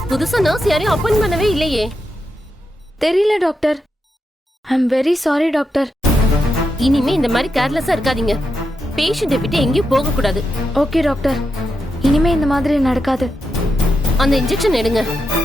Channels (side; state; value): both; normal; correlation 0.86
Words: புதுசா நர்ஸ் யாரையும் அப்பாயிண்ட் பண்ணவே இல்லையே. தெரியல doctor. I am very sorry doctor. இனிமே இந்த மாதிரி கேர்லெஸ்ஸா இருக்காதீங்க. பேஷண்ட்டை விட்டு எங்கேயும் போக கூடாது. ஓகே டாக்டர், இனிமே இந்த மாதிரி நடக்காது. அந்த இன்ஜெக்ஷன் எடுங்க.